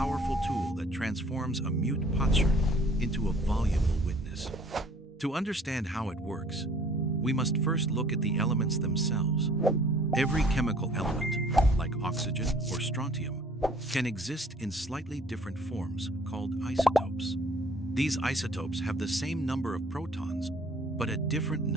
tool that transforms a mute potsherd into a voluble witness. To understand how it works, we must first look at the elements themselves. Every chemical element, like oxygen or strontium, can exist in slightly different forms called isotopes. These isotopes have the same number of protons, but a different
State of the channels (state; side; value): normal; both; correlation 0.55